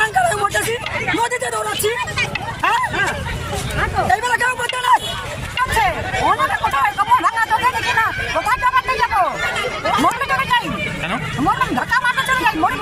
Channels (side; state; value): both; identical; correlation 1.00